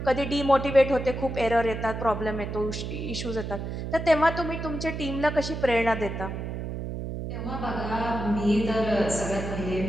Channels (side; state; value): right; noise; hum, 5 dB below the sound